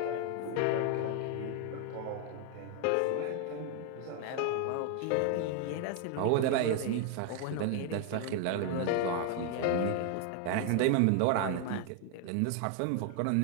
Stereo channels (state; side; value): different; both; correlation 0.01